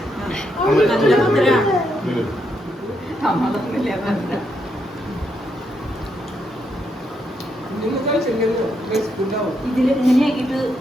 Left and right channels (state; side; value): normal; both; correlation 0.79